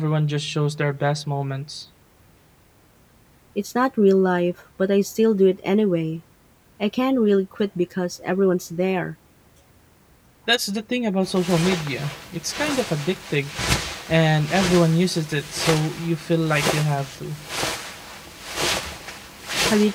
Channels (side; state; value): both; identical; correlation 1.00